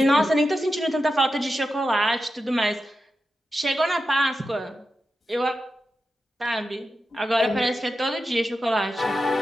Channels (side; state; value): both; normal; correlation 0.90